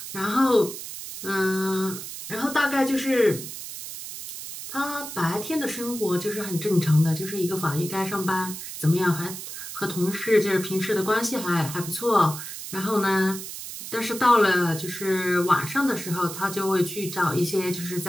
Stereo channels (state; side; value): noise; right; hiss, 9 dB below the sound